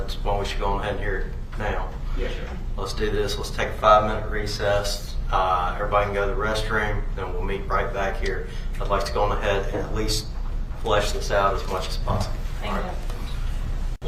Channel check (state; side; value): identical; both; correlation 1.00